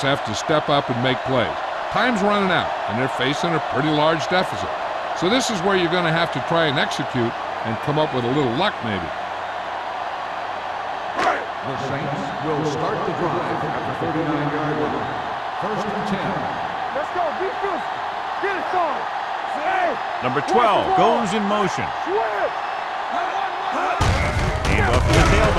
have to step up and make plays. Time's running out, and they're facing a pretty large deficit. So this is where you're going to have to try and execute and come up with a little luck maybe. The Saints will start the drive at the 39-yard line. First and 10. Let's go. Be physical. Get it started. Hey. Number 12 goes in motion. Switch. Hand off to the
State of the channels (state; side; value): identical; both; correlation 1.00